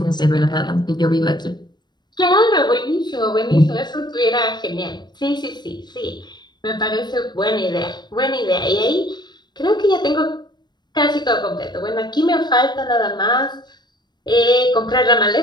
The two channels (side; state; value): right; late; 0.21 ms